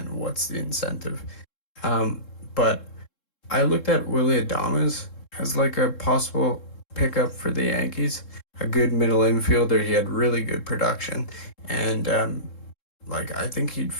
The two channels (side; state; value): right; late; 3.7 ms